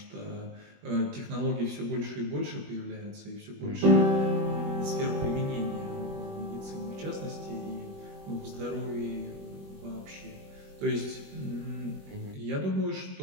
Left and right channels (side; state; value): left; late; 21 ms